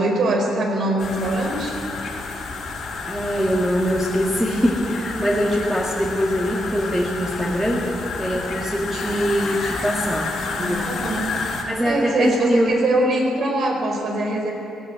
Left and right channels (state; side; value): normal; both; correlation 0.81